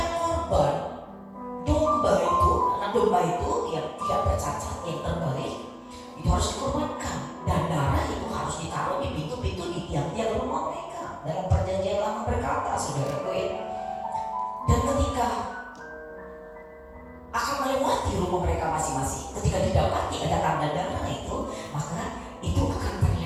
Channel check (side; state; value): both; identical; correlation 1.00